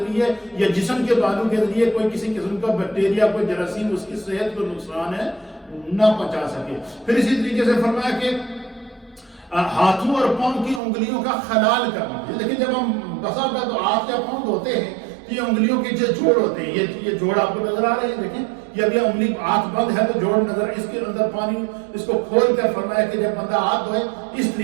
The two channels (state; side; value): drops out; left; at 10.8 s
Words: یا جسم کے بالوں کے ذریعے کوئی کسی قسم کا بیکٹیریا, کوئی جراثیم اس کی صحت کو نقصان ہے نہ پہنچا سکے. پھر اسی طریقے سے فرمایا کہ ہاتھوں اور پاؤں کی انگلیوں کا خلال کرنا. لیکن جب ہم بسا ہوتا تو ہاتھ یا پاؤں دھوتے ہیں تو یہ انگلیوں کے جو جوڑ ہوتے ہیں, یہ جوڑ آپ کو نظر آ رہے ہیں, دیکھیں یہ ابھی انگلی ہاتھ بند ہے تو جوڑ نظر, اس کے اندر پانی اس کو کھول کر فرمایا کہ جب بندہ ہاتھ دھوئے اس